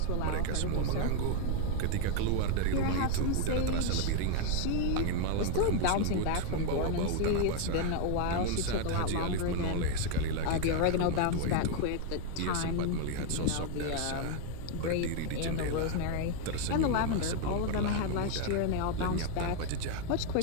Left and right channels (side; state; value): both; different; correlation 0.01